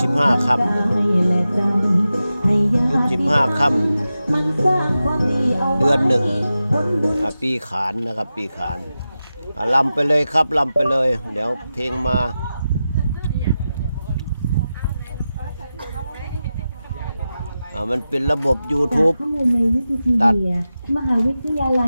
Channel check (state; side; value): inverted; both; correlation -0.92